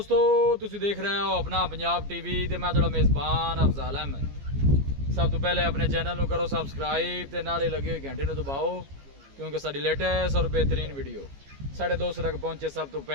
तुसी देख रहे हो अपना पंजाब टीवी ते मैं तुहाडा मेज़बान अफजाल अहमद। सब तो पहले अपने चैनल को करो सब्सक्राइब ते नाले लगे हुए घंटे को दबाओ, क्योंकि साडी लेटेस्ट और बेहतरीन वीडियो साढ़े दोस्तों तक पहुंचे सब तो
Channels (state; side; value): late; left; 15 ms